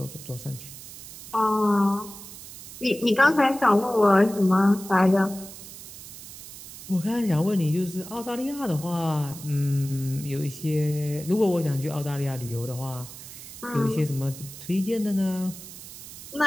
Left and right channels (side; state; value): right; noise; hiss, 14 dB below the sound